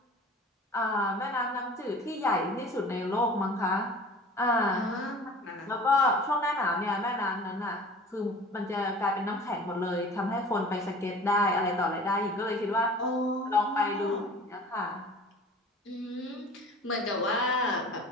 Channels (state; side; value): normal; both; correlation 0.43